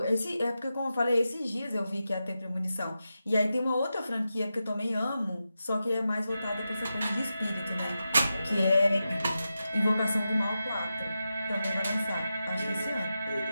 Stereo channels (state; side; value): inverted; both; correlation -0.90